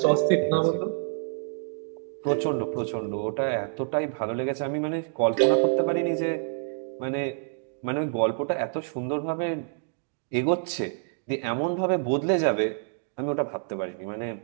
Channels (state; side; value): silent; left; 60 dB below the other